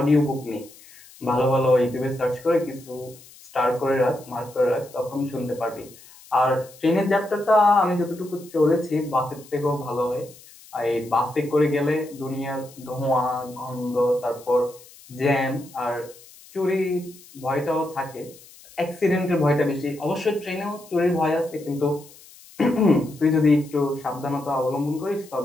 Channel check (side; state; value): left; noise; hiss, 22 dB below the sound